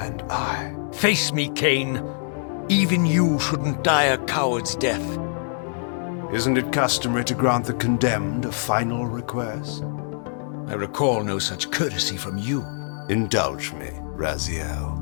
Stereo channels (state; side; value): silent; right; digital silence